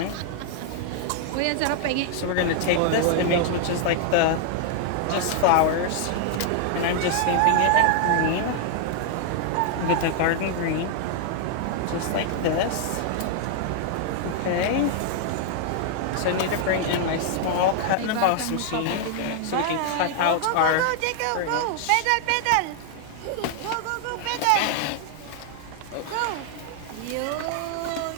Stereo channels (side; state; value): both; different; correlation 0.00